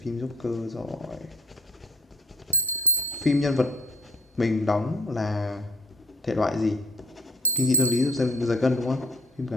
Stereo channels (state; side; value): normal; both; correlation 0.54